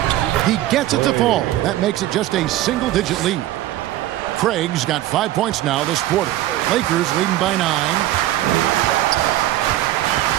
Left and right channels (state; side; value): quieter; left; 14.6 dB